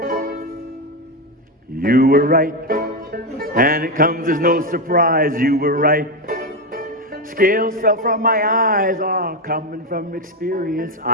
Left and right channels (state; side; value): normal; both; correlation 0.10